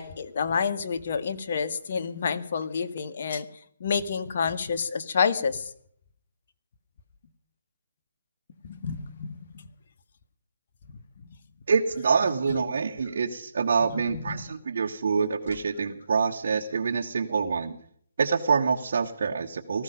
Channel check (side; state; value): both; inverted; correlation -0.80